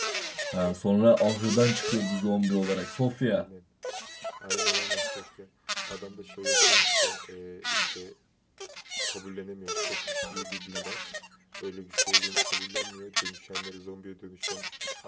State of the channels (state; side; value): identical; both; correlation 1.00